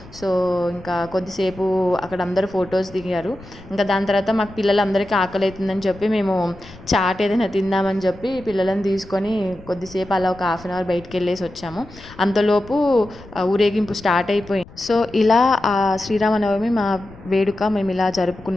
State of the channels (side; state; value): left; noise; rumble, 20 dB below the sound